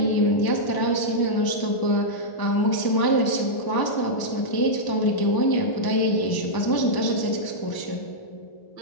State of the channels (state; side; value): late; right; 1.0 ms